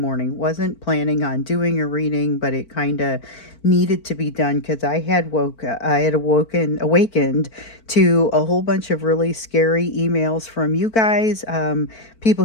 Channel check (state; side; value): late; right; 4.5 ms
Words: Wasn't planning on doing a reading, but it kind of needed to be done because I had awakened to a whole bunch of really scary emails from you guys. People